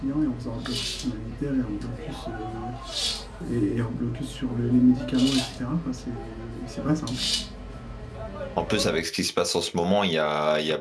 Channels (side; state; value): both; identical; correlation 1.00